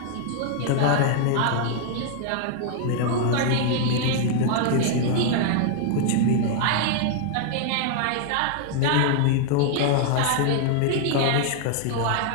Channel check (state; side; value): different; both; correlation -0.01